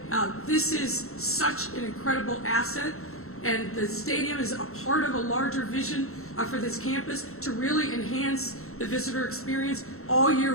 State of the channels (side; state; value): right; late; 0.63 ms